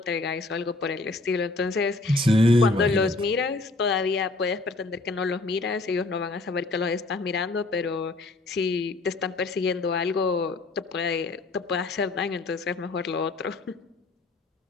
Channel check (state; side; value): quieter; right; 3.2 dB